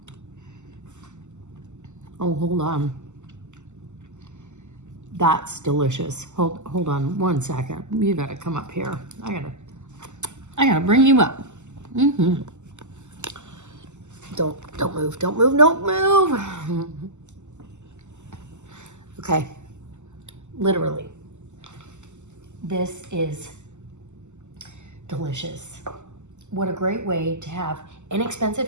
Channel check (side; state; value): left; late; 0.84 ms